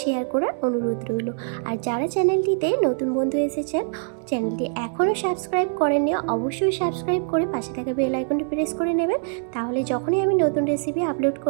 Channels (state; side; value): silent; left; 63 dB below the other